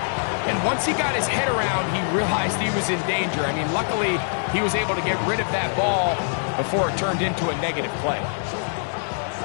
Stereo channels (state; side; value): silent; right; digital silence